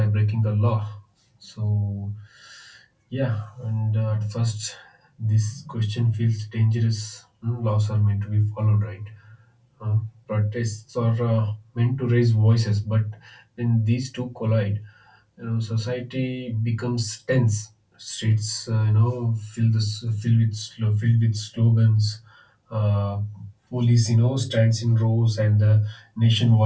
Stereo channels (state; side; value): identical; both; correlation 1.00